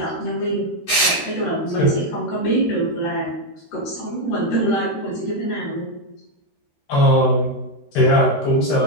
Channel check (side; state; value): right; late; 13 ms